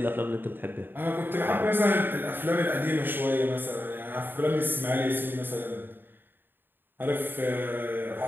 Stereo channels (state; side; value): late; left; 0.096 ms